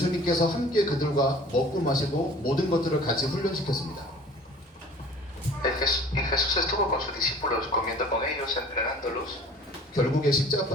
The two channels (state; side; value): normal; both; correlation 0.47